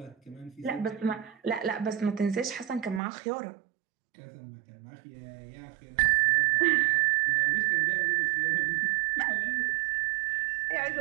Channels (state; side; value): drops out; left; at 3.0 s